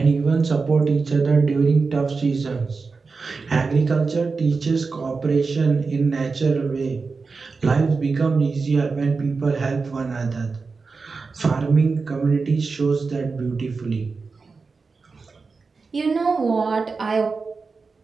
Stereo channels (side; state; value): left; quieter; 4.4 dB